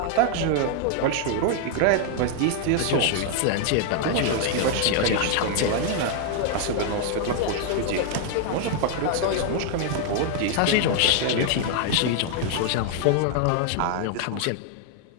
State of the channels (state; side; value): different; both; correlation 0.00